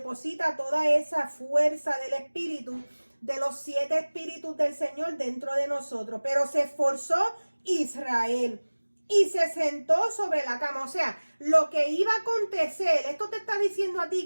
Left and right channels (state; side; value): inverted; both; correlation -1.00